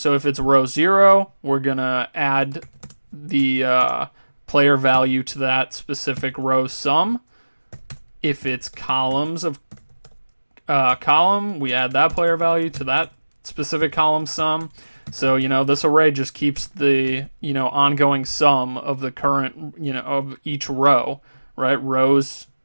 if it's row 0, we're going to add the player value to that specific row sum. If it's columns of column, we add that player value to that specific column sum. So, this array just keeps the, ongoing sum of the current, of each row, right? Rows,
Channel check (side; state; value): both; inverted; correlation -1.00